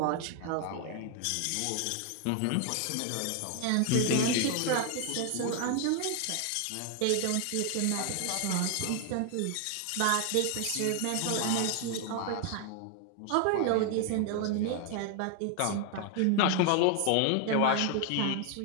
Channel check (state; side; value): different; both; correlation 0.00